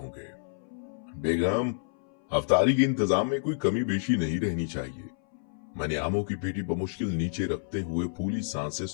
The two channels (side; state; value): right; silent; 59 dB below the other